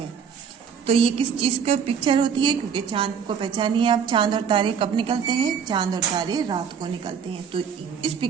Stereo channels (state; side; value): quieter; left; 7.1 dB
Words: तो ये किस चीज का पिक्चर होती है? क्योंकि चांद को पहचानिए आप, चांद और तारे कब निकलते हैं? चांद और तारे रात को निकलते हैं। तो इस